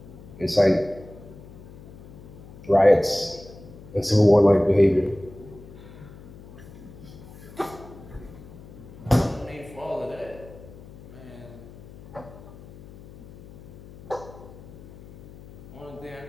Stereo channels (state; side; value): noise; left; hum, 18 dB below the sound